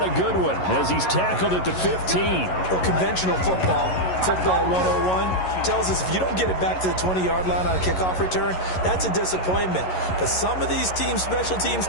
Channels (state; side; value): late; right; 11 ms